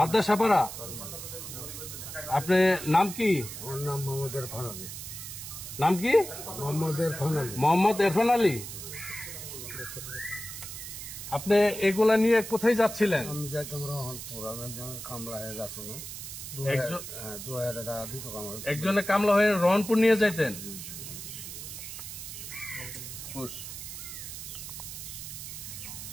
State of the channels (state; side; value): noise; right; hiss, 9 dB below the sound